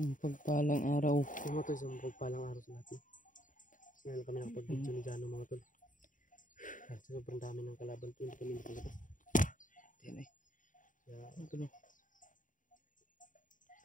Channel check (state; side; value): late; right; 0.38 ms